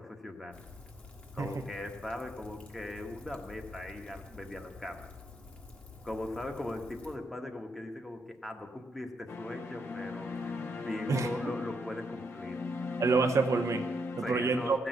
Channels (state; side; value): normal; both; correlation 0.78